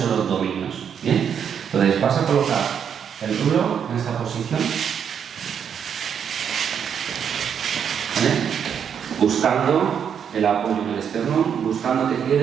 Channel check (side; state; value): left; quieter; 7.9 dB